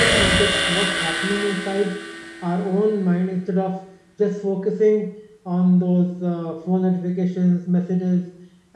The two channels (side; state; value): both; identical; correlation 1.00